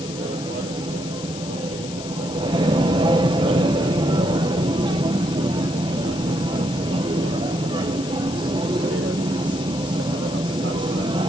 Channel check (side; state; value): left; noise; hiss, 13 dB below the sound